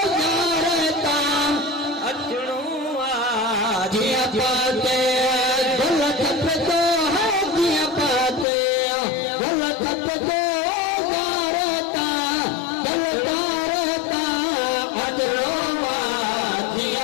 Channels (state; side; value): drops out; right; at 8.5 s